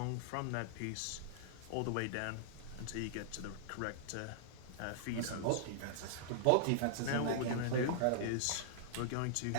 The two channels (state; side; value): different; both; correlation -0.01